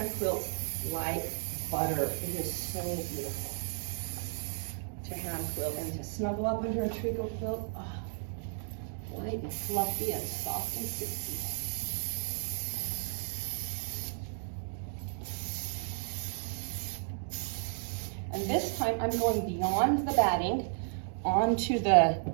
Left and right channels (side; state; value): left; silent; digital silence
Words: quilt like butter. It is so beautiful to hand quilt and to snuggle up under a tricot quilt. Oh, light and fluffy and soft and silky. And this time I'm going beyond the batting onto the